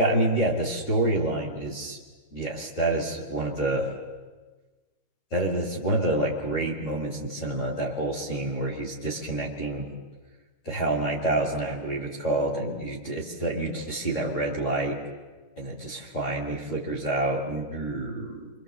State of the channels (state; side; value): late; right; 13 ms